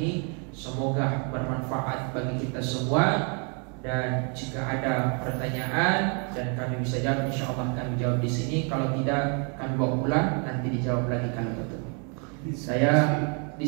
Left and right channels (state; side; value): quieter; left; 37.6 dB